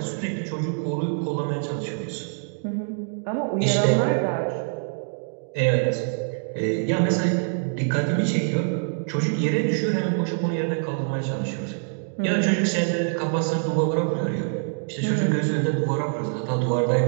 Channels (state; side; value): silent; left; digital silence